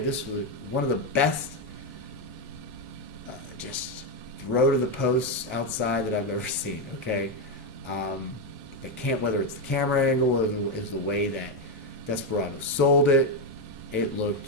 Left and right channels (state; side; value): normal; both; correlation 0.06